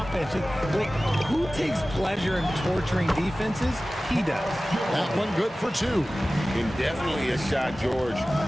Like, who takes pleasure in torturing defenses? He does. That one good for two. And definitely a shot George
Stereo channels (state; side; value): normal; both; correlation 0.97